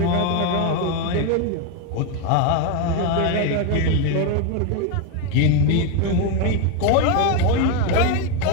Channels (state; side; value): different; both; correlation 0.02